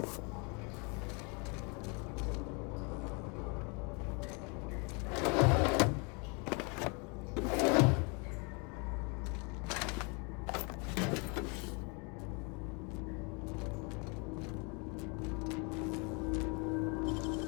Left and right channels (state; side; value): quieter; right; 32.9 dB